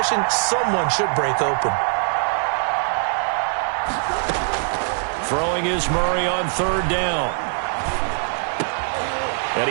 someone should break open. Throwing is Murray on third down. And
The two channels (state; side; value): silent; left; 64 dB below the other